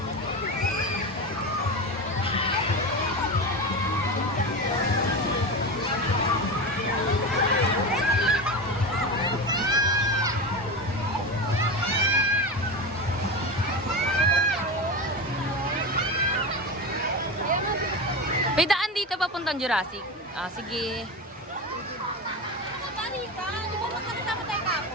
May daan dito papuntang Jurassic. Ah, sige. Pari ka, di ba magkakasama tayo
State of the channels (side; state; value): both; normal; correlation 0.22